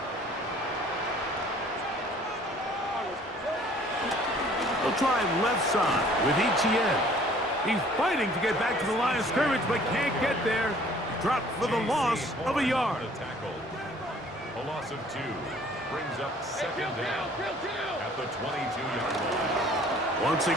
They'll try left side with ETN. He's fighting to get back to the line of scrimmage, but can't get there. Dropped for the loss of a yard. A loss of 2 brings up 2nd down at the 22-yard line. Once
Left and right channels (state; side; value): normal; both; correlation 0.55